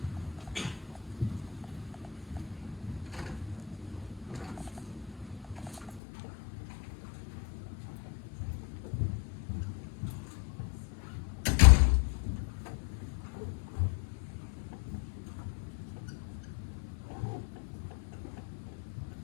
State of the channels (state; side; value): drops out; right; at 6.0 s